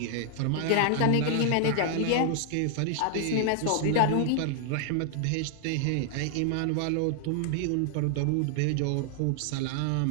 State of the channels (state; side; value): different; both; correlation 0.00